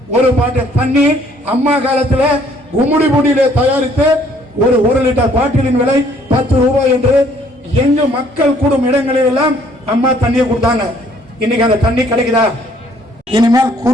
ஒரு பாட்டு தண்ணி அம்மா காலத்துல கும்முடி புடியில தயாரித்து ஒரு 1 லிட்டர் பாட்டிலின் விலை 10 ரூபாய் என்று எங்கு மக்கள் கூடும் இடங்களில் எல்லாம் அம்மா தண்ணியை கொடுத்தாங்க. இன்னைக்கு அந்த தண்ணி கிடைக்குதா? இனிமேல்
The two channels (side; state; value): both; normal; correlation 0.62